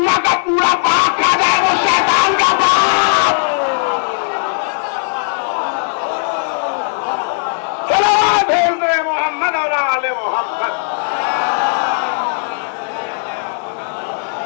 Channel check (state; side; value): silent; right; digital silence